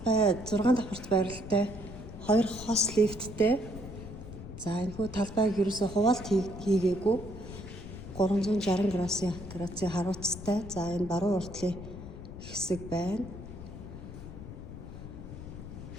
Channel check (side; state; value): left; noise; rumble, 12 dB below the sound